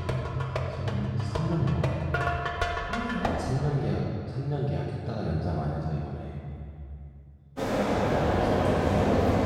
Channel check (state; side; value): identical; both; correlation 1.00